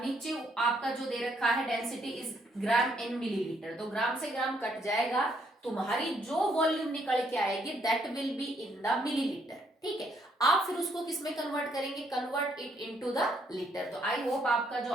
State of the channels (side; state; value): both; normal; correlation 0.71